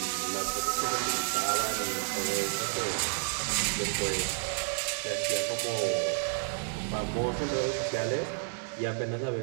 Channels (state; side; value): silent; left; digital silence